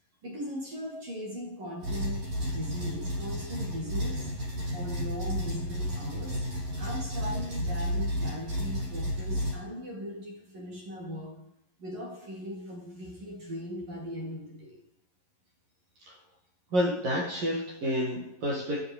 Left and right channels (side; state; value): left; late; 11 ms